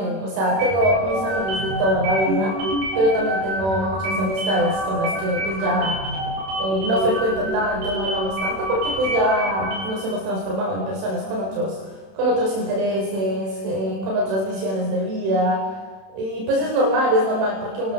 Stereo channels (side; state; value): left; late; 31 ms